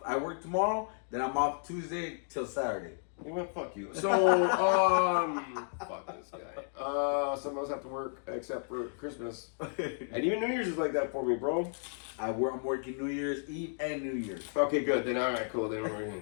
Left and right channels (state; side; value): silent; right; digital silence